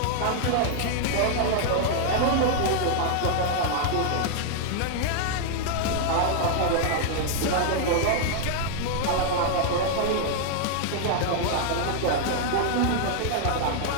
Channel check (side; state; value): both; different; correlation 0.00